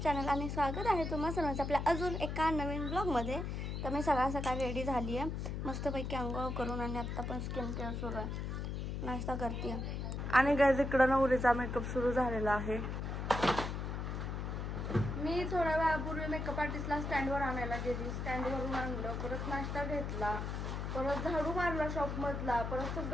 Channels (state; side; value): noise; left; hum, 3 dB below the sound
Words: आणि स्वागत आहे तुम्हा सर्वांचं आपल्या अजून एका नवीन ब्लॉगमध्ये. तर मी सकाळ रेडी झाली आहे, मस्तपैकी अंघोळ करून आणि आत्ता पण स्किन केअर सुरू आहे, नाश्ता करते आणि गाईज इकडं नवरीचा मेकअप सुरू झालेला आहे. मी थोड्या वेळापूर्वी मेकअप आर्टिस्टला स्टँडवर आणायला गेली, स्टँडवरून आणलं, परत नाश्ता घेतला, परत झाडू मारला शॉपमधला, परत